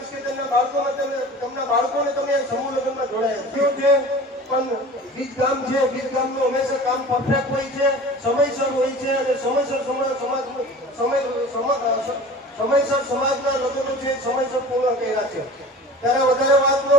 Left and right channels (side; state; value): both; normal; correlation 0.40